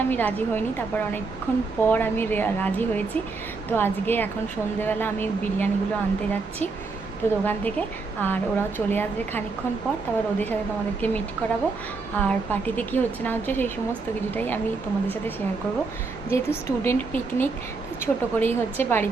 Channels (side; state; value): left; quieter; 4.1 dB